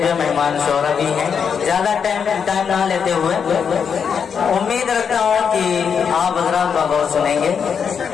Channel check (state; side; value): quieter; right; 6.8 dB